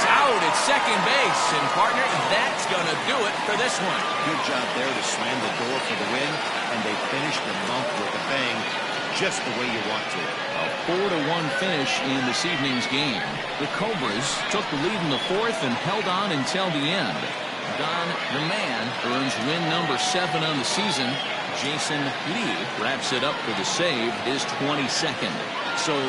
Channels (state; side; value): identical; both; correlation 1.00